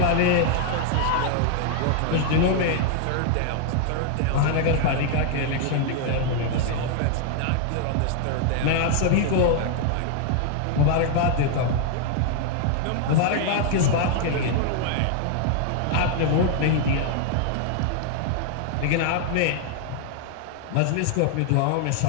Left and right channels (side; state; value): both; different; correlation 0.00